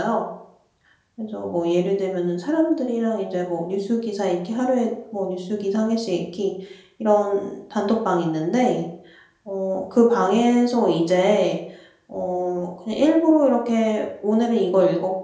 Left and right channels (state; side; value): identical; both; correlation 1.00